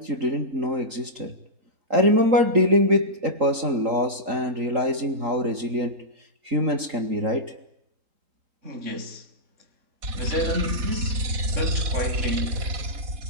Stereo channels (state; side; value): late; left; 3.8 ms